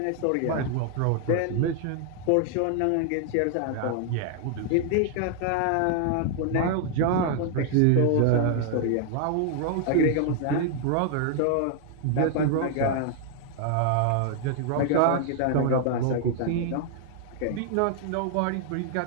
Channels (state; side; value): different; both; correlation 0.00